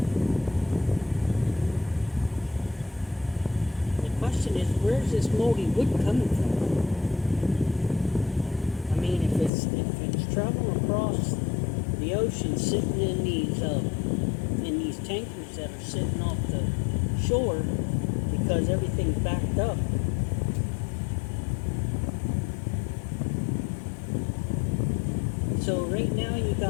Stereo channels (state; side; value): drops out; right; at 9.5 s